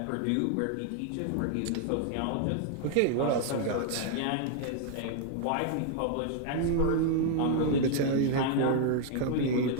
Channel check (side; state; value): both; different; correlation 0.00